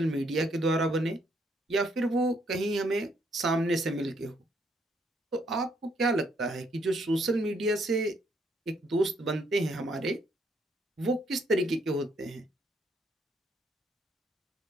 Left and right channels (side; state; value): both; normal; correlation 0.71